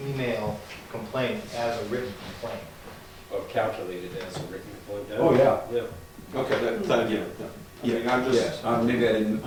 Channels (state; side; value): identical; both; correlation 1.00